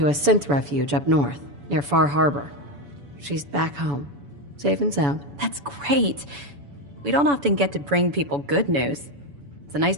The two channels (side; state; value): left; late; 7.0 ms